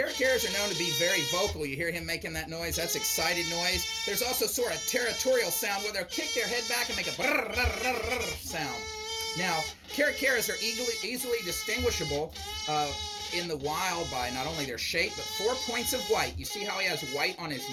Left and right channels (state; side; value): identical; both; correlation 1.00